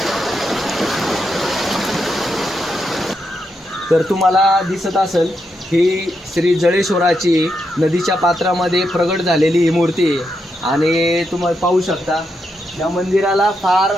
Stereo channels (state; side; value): normal; both; correlation 0.83